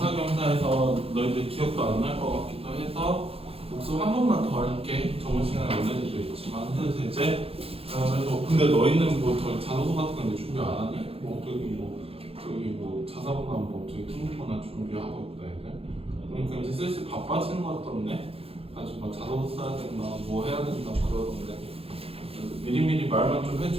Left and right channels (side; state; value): left; late; 0.28 ms